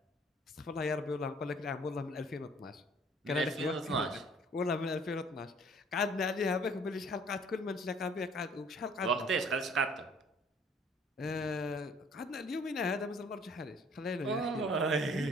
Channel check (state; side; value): normal; both; correlation 0.56